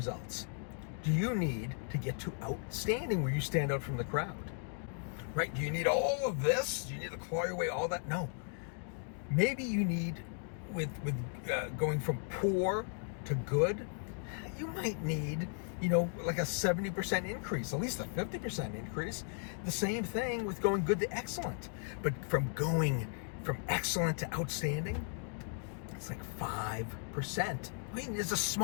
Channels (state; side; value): silent; right; 54 dB below the other